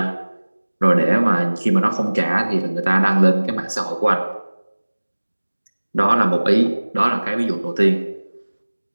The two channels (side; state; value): both; inverted; correlation -1.00